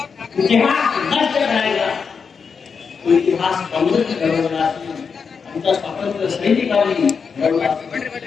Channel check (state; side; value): quieter; right; 5.8 dB